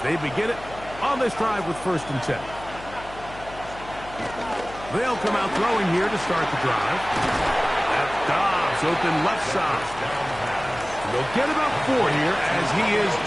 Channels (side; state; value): left; noise; hum, 16 dB below the sound